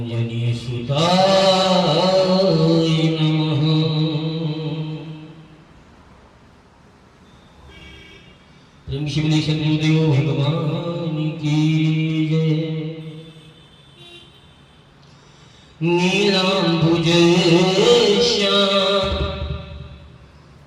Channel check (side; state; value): both; identical; correlation 1.00